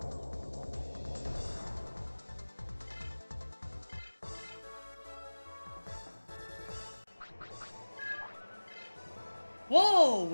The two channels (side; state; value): both; inverted; correlation -1.00